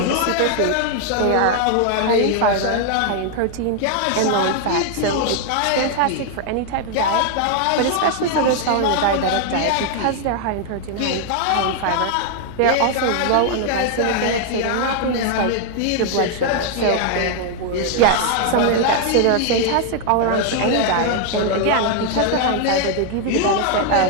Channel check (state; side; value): different; both; correlation 0.00